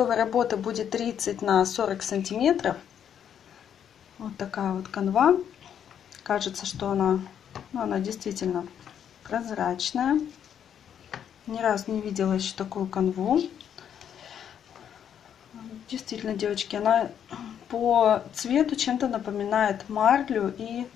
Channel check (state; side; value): quieter; right; 8.9 dB